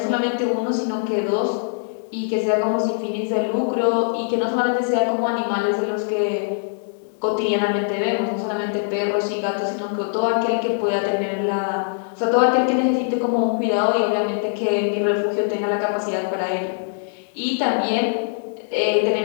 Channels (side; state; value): right; silent; digital silence